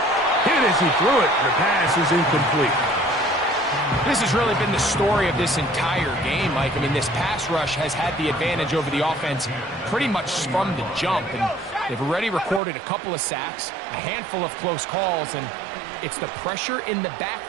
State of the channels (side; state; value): left; drops out; at 12.6 s